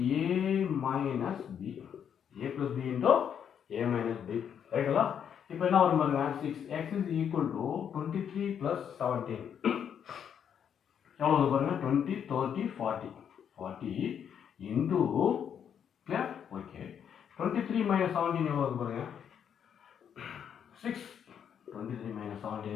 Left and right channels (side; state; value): right; quieter; 8.3 dB